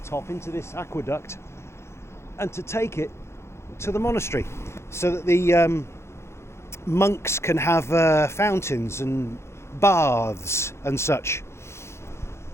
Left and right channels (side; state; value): right; late; 0.13 ms